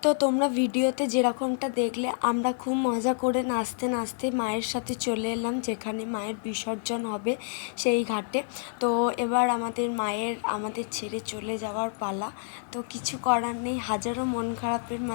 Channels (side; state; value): right; silent; 59 dB below the other